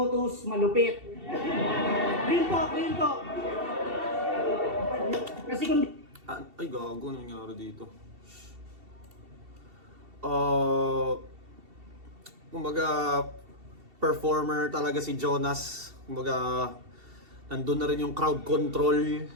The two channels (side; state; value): left; late; 2.7 ms